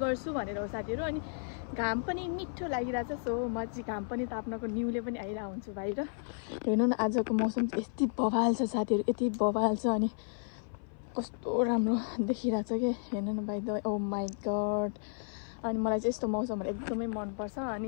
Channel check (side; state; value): right; silent; 56 dB below the other